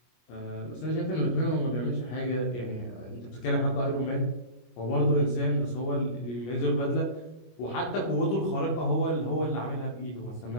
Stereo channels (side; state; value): right; late; 25 ms